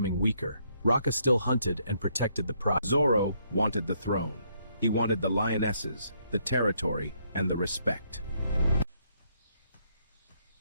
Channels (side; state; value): both; inverted; correlation -0.72